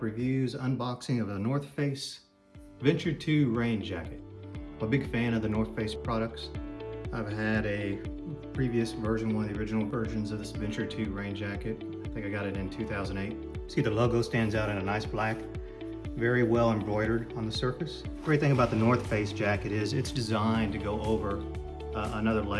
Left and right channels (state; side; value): identical; both; correlation 1.00